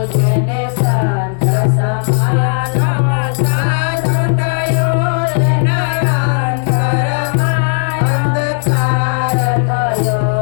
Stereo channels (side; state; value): right; silent; 58 dB below the other